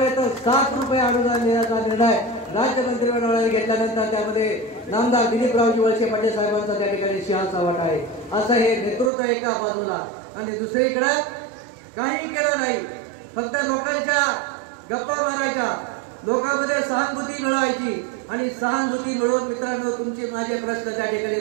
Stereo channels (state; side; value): drops out; left; at 9.1 s